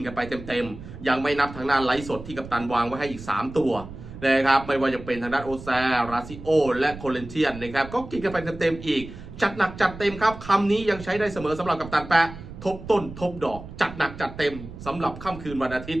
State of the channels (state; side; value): noise; right; rumble, 13 dB below the sound